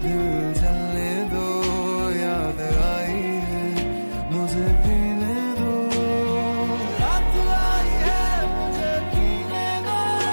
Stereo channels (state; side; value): inverted; both; correlation -1.00